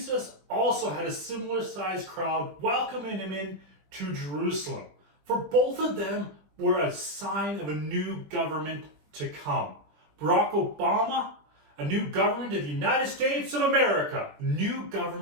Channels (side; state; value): left; late; 20 ms